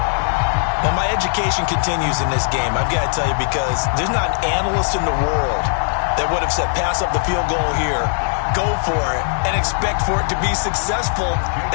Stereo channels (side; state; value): right; silent; 58 dB below the other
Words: Well, my education continues in this game, I've got to tell you, because there's not an analyst in the world that would have said pass up the field goal here, go for it, and expect for it to be successful,